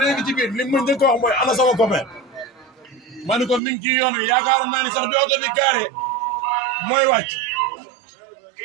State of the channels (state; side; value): drops out; left; at 3.6 s